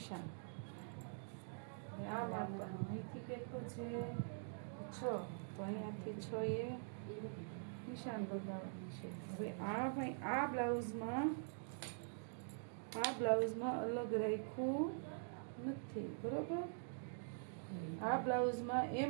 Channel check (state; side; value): silent; left; digital silence